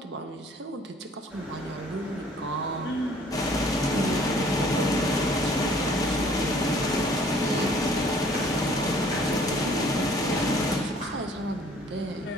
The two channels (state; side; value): normal; both; correlation 0.56